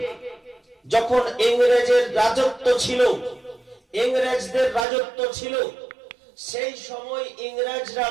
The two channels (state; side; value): drops out; left; at 4.9 s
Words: যখন ইংরেজের রাজত্ব ছিল, ইংরেজদের রাজত্ব ছিল, সেই সময় ইংরেজরা